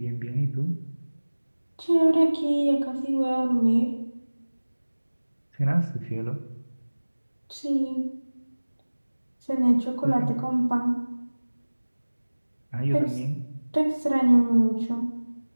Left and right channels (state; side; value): inverted; both; correlation -1.00